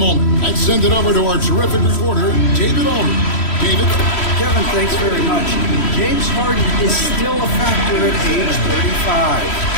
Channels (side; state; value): right; late; 3.1 ms